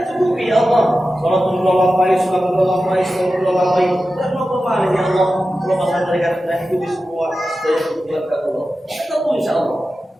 cukupi ya Allah. Salatullah alaihi wasallam. Dan mau kemana ya Allah? Kalau masalah mereka dan ikuti semua dari kebutuhan Allah. Ketemu insya Allah.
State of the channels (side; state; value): both; normal; correlation 0.93